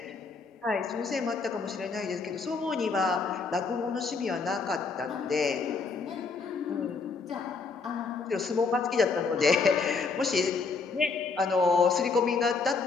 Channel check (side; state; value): right; quieter; 4.6 dB